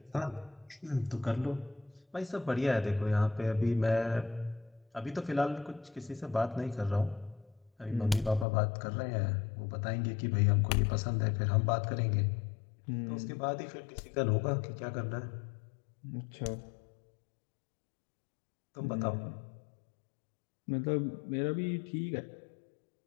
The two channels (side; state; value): right; drops out; at 8.5 s